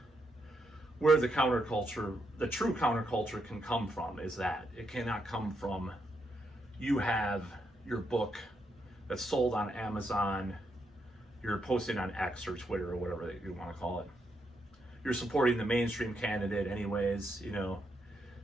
where the counterculture, the true counterculture, can come from. Is that it cannot come from you have your book that's sold on Amazon, you're posting on X or Twitter or whatever you want to call it. You're supporting the mainstream candidate anyways,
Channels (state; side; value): normal; both; correlation 0.80